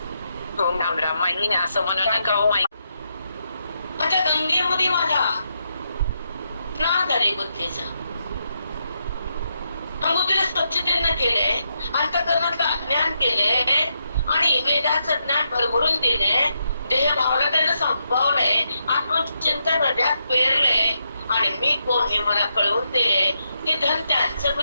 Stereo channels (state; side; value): inverted; both; correlation -0.81